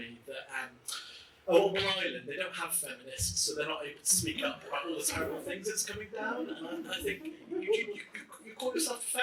that on Ireland, they don't have feminists, so they're not able to speak up about all the terrible things that's coming down. And I think you call yourself a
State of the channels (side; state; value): both; identical; correlation 1.00